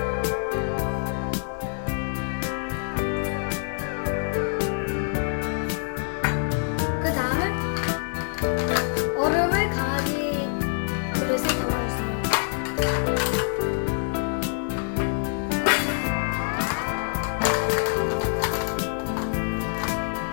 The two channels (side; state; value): right; silent; 61 dB below the other